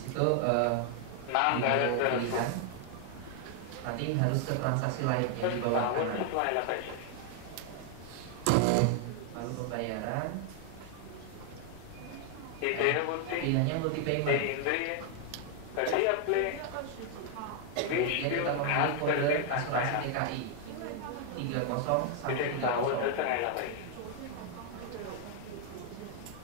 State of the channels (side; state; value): both; different; correlation 0.00